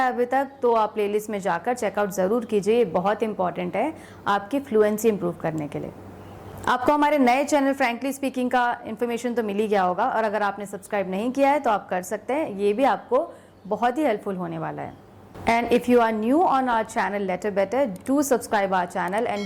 अभी तक तो आप प्लेलिस्ट में जाकर चेकआउट ज़रूर कीजिए. ये बहुत इंपॉर्टेंट है आपकी फ्लुएंसी इंप्रूव करने के लिए. आपको हमारे नए चैनल फ्रैंकली स्पीकिंग का इन्फॉर्मेशन तो मिल ही गया होगा और अगर आपने सब्सक्राइब नहीं किया है तो आप कर सकते हैं. ये भी आपको बहुत ही हेल्पफुल होने वाला है. And if you are new on our channel letter better, do subscribe our channel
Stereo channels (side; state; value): both; identical; correlation 1.00